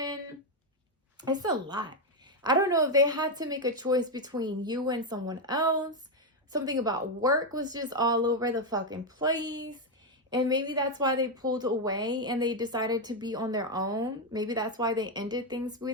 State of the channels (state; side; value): normal; both; correlation 0.05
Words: it's a lot. I don't know if they had to make a choice between you and someone else. Something about work was just all over the fucking place. And maybe that's why they pulled away and they decided to be on their own. Maybe that's why they ended things